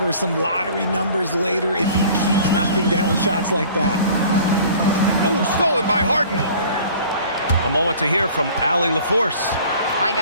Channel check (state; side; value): inverted; both; correlation -0.48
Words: some lottery numbers later if he keeps knocking down shots like that. Oh, stolen by Harden. A moment to hear from Allie LaForce. Hi,